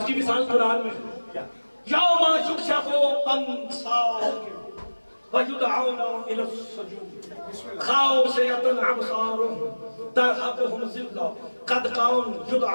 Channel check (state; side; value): inverted; both; correlation -1.00